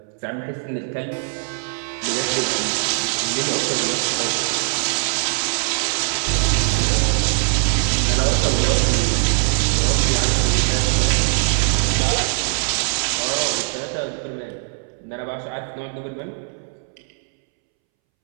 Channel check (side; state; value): left; silent; 65 dB below the other